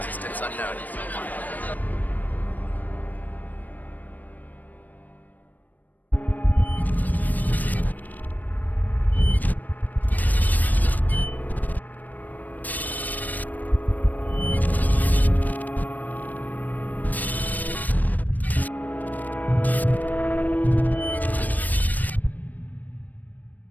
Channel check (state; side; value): late; right; 0.084 ms